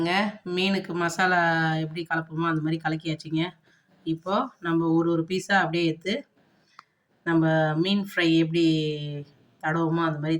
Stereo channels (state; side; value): identical; both; correlation 1.00